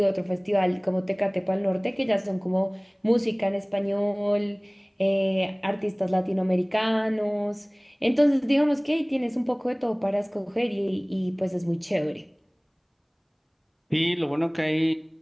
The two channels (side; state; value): both; identical; correlation 1.00